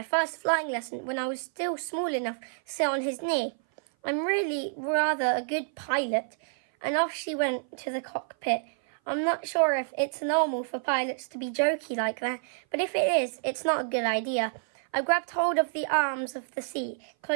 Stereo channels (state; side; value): silent; left; 56 dB below the other